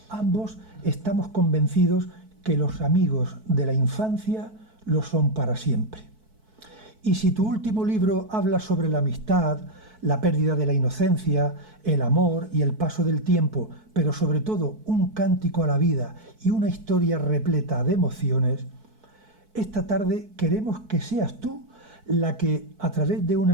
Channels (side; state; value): left; late; 4.6 ms